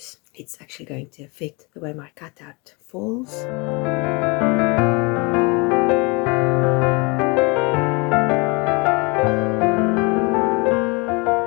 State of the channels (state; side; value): quieter; right; 29.0 dB